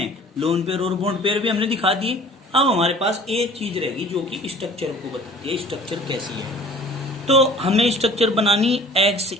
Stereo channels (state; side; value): normal; both; correlation 0.47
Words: लोन पेयर और बॉन्ड पेयर भी हमने दिखा दिए। अब हमारे पास एक चीज रहेगी जो कि स्ट्रक्चर को बताती है, स्ट्रक्चर कैसी है। तो हमें स्ट्रक्चर बनानी